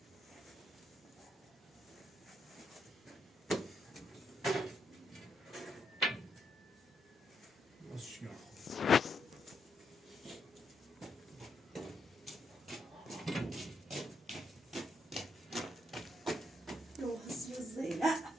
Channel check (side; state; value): both; normal; correlation 0.78